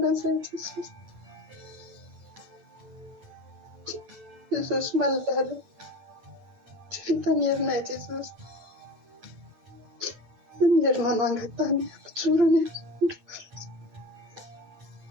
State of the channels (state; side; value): late; left; 9.1 ms